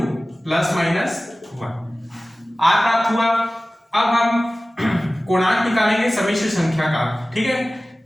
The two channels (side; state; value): both; normal; correlation 0.97